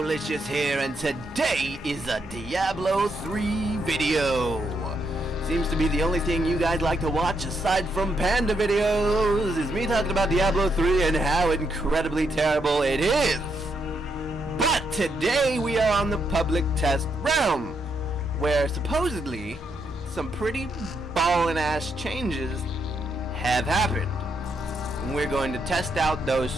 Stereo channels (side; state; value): both; normal; correlation 0.78